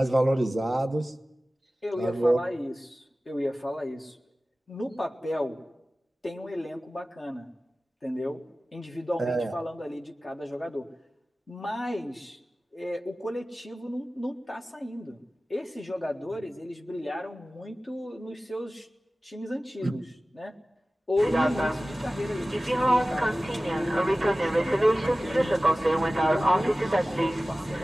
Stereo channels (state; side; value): normal; both; correlation 0.97